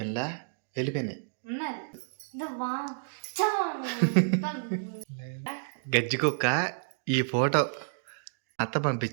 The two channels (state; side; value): silent; left; digital silence